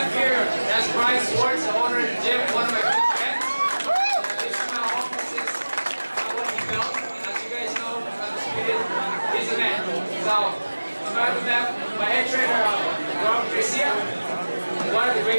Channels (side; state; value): both; inverted; correlation -1.00